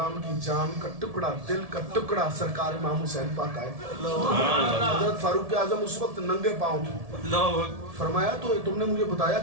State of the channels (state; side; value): late; left; 1.7 ms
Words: की जान का टुकड़ा, दिल का टुकड़ा सरकार इमाम हुसैन पाक आए। हजरत फारूक आजम उस वक्त नंगे पांव थे। फरमाया तो तुमने मुझे बताया